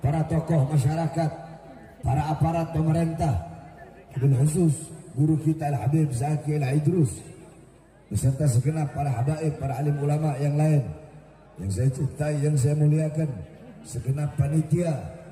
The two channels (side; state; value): both; identical; correlation 1.00